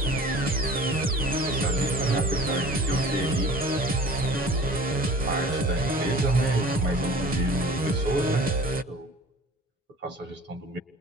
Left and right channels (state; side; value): normal; both; correlation 0.44